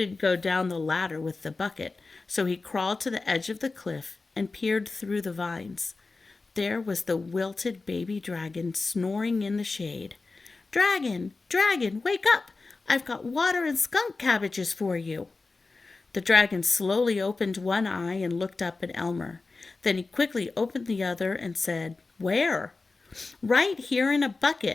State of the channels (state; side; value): quieter; right; 3.8 dB